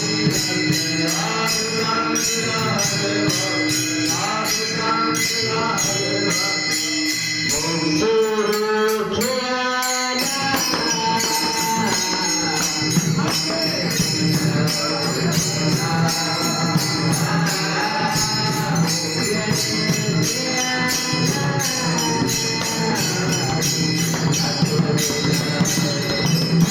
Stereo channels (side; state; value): both; identical; correlation 1.00